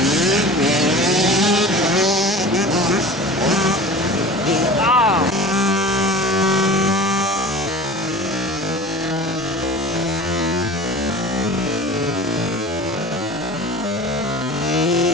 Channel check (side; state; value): both; normal; correlation 0.38